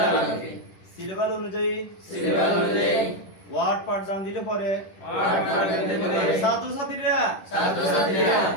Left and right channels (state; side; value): late; right; 10 ms